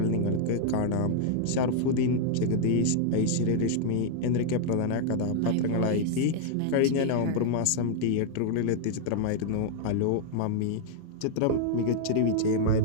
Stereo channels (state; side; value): different; both; correlation -0.01